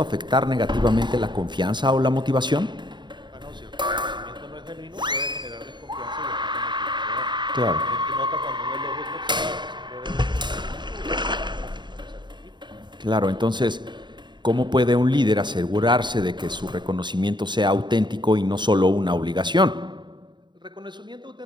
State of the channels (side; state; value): left; late; 0.22 ms